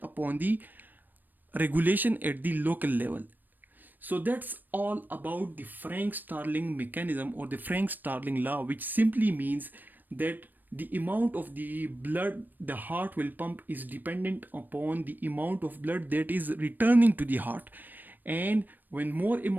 upon the regulation at the local level. So that's all about the Frank Starling mechanism or the Frank Starling law, which simply means that the amount of the blood the heart will pump is dependent upon the amount of blood that is returning to the heart. And when more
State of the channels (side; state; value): left; late; 0.090 ms